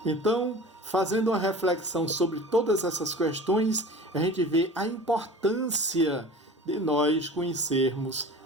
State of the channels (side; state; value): both; normal; correlation 0.39